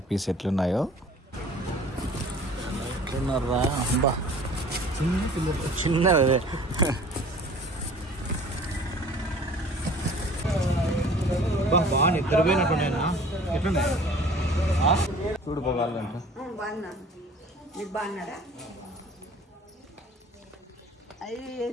ఎట్లున్నాయో. ఎట్లున్నారా? అబ్బా చిన్నదే. బాగా నిద్రపోయినట్టున్నాయినా. ఎట్లున్నాయి చూడు పోవాలంట. మీరు బాగున్నారా? అవి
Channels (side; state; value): both; normal; correlation 0.48